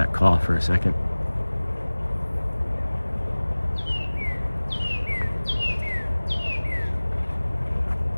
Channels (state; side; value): inverted; both; correlation -1.00